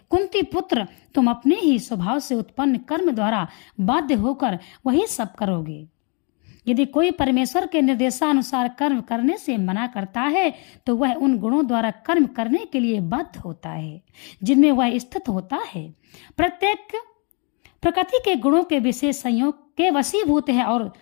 कुंती पुत्र, तुम अपने ही स्वभाव से उत्पन्न कर्म द्वारा बाध्य होकर वही सब करोगे। यदि कोई परमेश्वर के निर्देशानुसार कर्म करने से मना करता है तो वह उन गुणों द्वारा कर्म करने के लिए बाध्य होता है जिनमें वह स्थित होता है। प्रत्येक प्रकृति के गुणों के विशेष संयोग के वशीभूत है और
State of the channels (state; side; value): quieter; right; 35.2 dB